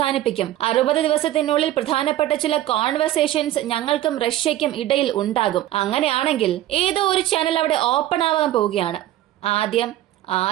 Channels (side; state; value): left; quieter; 14.0 dB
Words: 60 ദിവസത്തിനുള്ളിൽ പ്രധാനപ്പെട്ട ചില കോൺവെർസേഷൻസ് ഞങ്ങൾക്കും റഷ്യയ്ക്കും ഇടയിൽ ഉണ്ടാകും. അങ്ങനെയാണെങ്കിൽ ഏതോ ഒരു ചാനൽ അവിടെ ഓപ്പൺ ആവാൻ പോവുകയാണ്. ആദ്യം